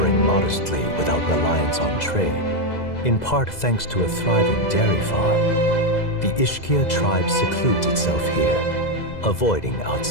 modestly without reliance on trade, in part thanks to a thriving dairy farm. The Ishkia tribe secludes itself here, avoiding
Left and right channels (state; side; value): late; right; 2.0 ms